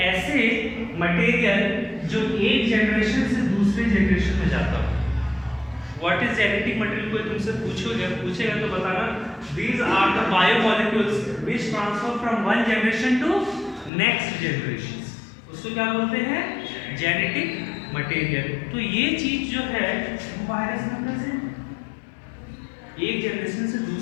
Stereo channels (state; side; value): drops out; right; at 13.9 s